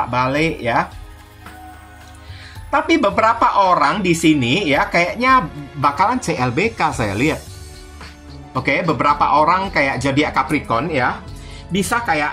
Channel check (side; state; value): both; identical; correlation 1.00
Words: ya. Tapi beberapa orang di sini ya kayaknya bakalan CLBK saya lihat. Oke, beberapa orang kayak zodiak Capricorn ya, bisa